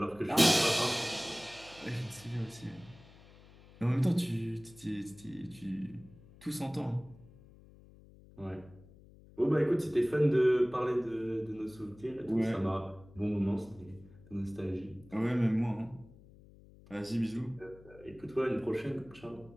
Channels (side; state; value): left; noise; hum, 22 dB below the sound